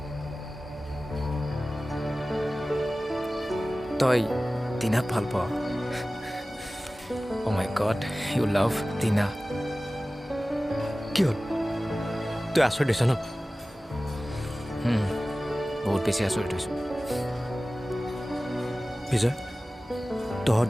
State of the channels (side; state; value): both; normal; correlation 0.97